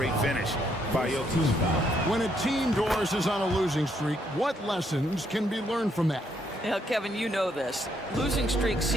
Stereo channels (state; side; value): normal; both; correlation 0.73